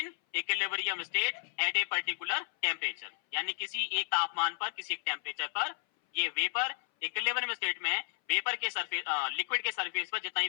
equilibrium state at a particular temperature. यानी किसी एक तापमान पर, किसी एक टेम्परेचर पर ये वेपर इक्विलिब्रियम स्टेट में वेपर के सरफेस, लिक्विड के सरफेस पर जितना ही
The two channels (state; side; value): silent; right; 56 dB below the other